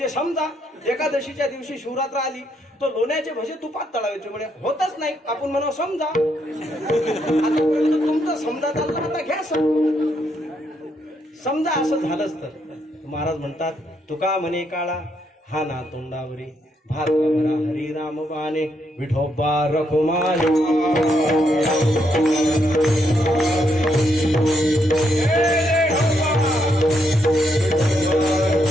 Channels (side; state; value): both; normal; correlation 0.76